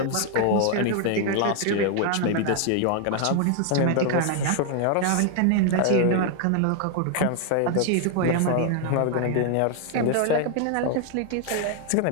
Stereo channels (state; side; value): different; both; correlation 0.00